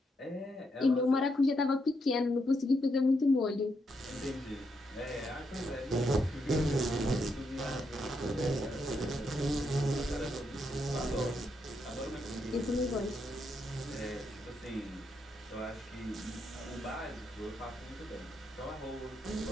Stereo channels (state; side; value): normal; both; correlation 0.79